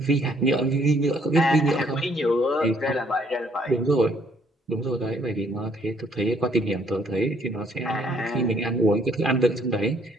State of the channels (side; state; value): both; normal; correlation 0.66